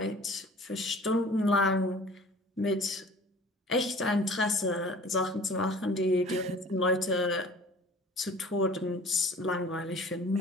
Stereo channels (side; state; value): both; normal; correlation 0.47